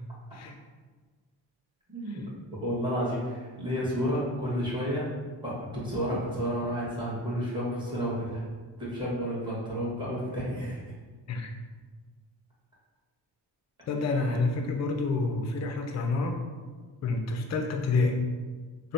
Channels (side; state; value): both; normal; correlation 0.44